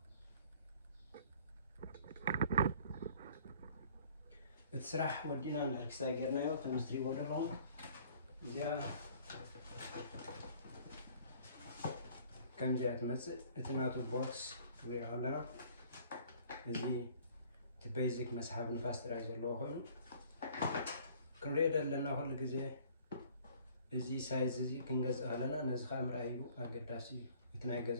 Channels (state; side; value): inverted; both; correlation -0.54